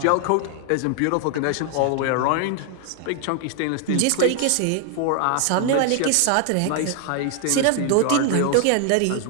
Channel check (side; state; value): both; different; correlation 0.00